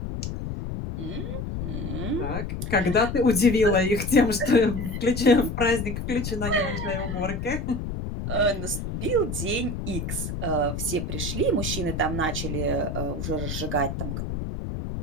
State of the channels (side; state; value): left; noise; rumble, 4 dB below the sound